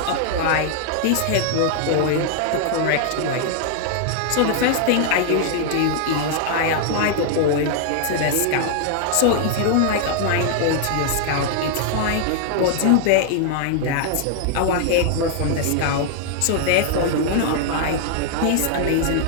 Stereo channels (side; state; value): both; different; correlation 0.00